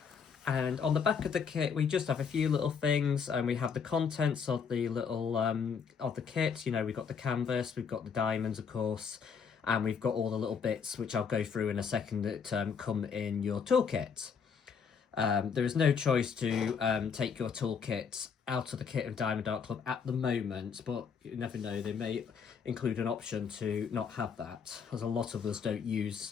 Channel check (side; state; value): right; quieter; 6.3 dB